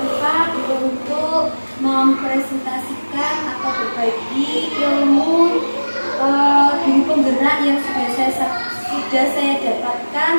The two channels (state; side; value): inverted; both; correlation -1.00